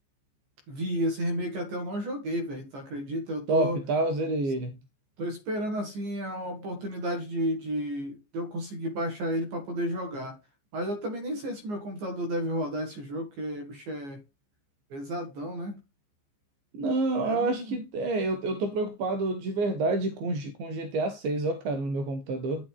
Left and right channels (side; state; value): left; late; 14 ms